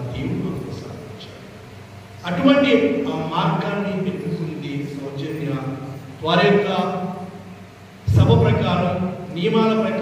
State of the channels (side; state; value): both; identical; correlation 1.00